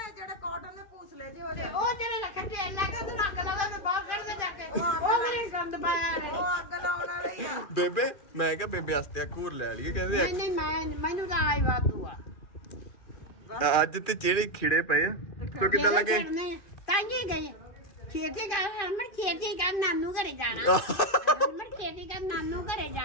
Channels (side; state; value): right; late; 2.4 ms